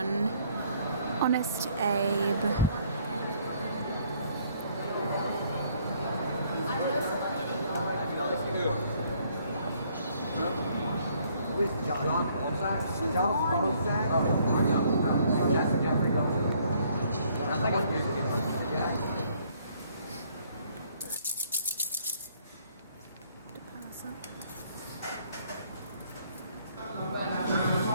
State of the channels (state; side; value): inverted; both; correlation -0.65